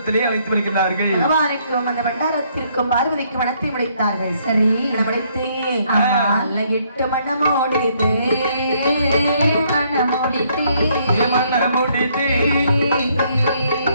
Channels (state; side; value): inverted; both; correlation -0.69